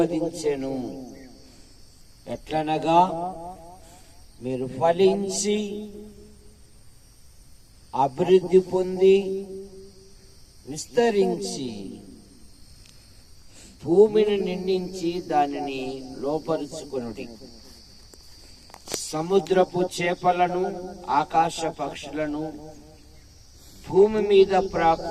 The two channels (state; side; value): identical; both; correlation 1.00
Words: ఎట్లనగా, మీరు ఫలించి అభివృద్ధి పొంది విస్తరించి భూమిని నిండించి దానిని లోపరుచుకొనుడి. సముద్రపు చేపలను, ఆకాశ పక్షులను, భూమి మీద